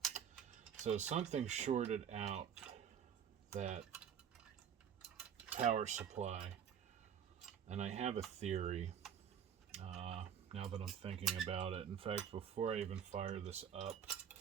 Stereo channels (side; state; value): left; quieter; 8.4 dB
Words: So something shorted out that power supply, and I have a theory now that I'm thinking about it. In fact, before I even fire this up,